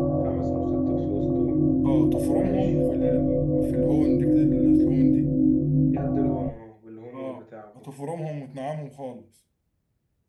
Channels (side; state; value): both; identical; correlation 1.00